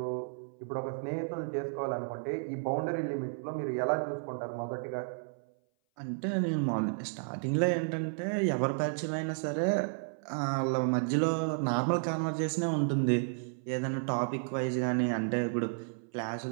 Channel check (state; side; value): silent; left; 56 dB below the other